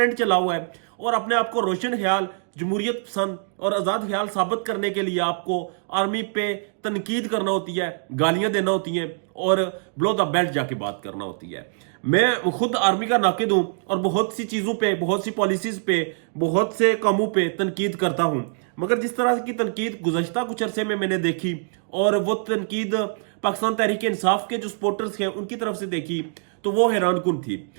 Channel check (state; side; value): silent; left; digital silence